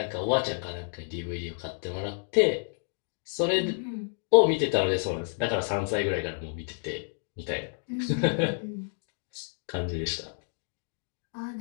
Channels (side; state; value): right; silent; digital silence